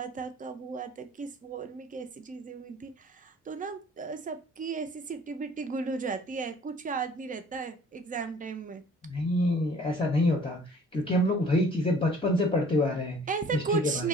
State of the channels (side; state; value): both; normal; correlation 0.52